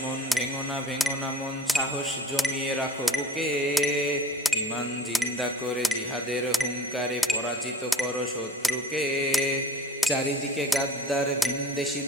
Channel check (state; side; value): normal; both; correlation 0.43